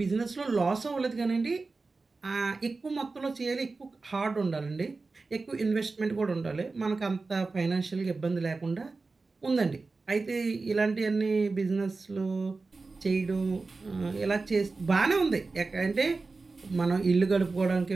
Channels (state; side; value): quieter; left; 3.8 dB